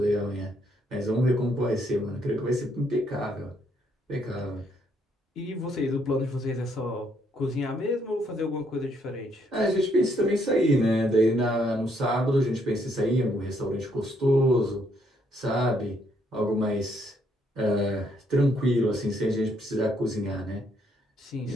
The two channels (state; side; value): normal; both; correlation 0.71